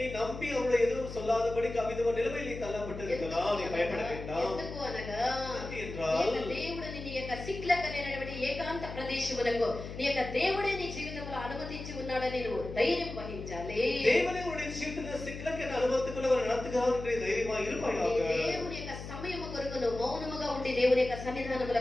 நம்பி அவருடைய எதுவும் சொல்லாதபடிக்கு அவிதமான நிலைமையில் நீ தள்ளப்பட்டிருக்கலாம். நீ பயப்பட வேண்டாம். ఎందుకు అనగా என்றால் దేవుడు నీ యొక్క సిక్లక్ అనేటువంటి ఏకాంత ప్రదేశములకు నీ యొక్క దేవుడే నీ జీవితంలో అనుమతించి ఉన్నాడని నువ్వు ధైర్యం వహించాలి. தேவனே உன்னுடைய ஜீவிதத்தில் சிக்கலுக்கு என்ன அனுபவத்துக்குள்ள அவர் நடத்துகிறார் என்று தைரியமா இருப்பாயாக. దేవుని యొక్క సమయము కొరకు నువ్వు మౌనముగా ఉండి దేవుని యొక్క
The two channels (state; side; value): noise; left; hum, 9 dB below the sound